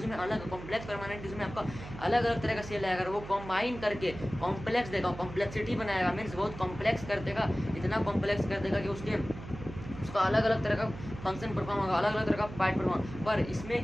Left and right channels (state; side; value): noise; right; hum, 12 dB below the sound